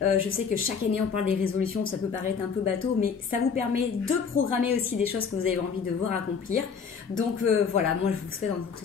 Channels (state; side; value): quieter; right; 6.1 dB